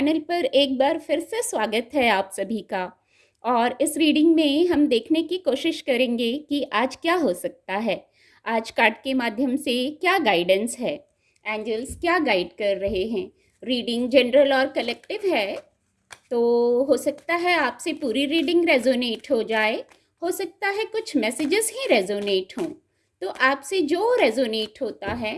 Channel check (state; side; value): identical; both; correlation 1.00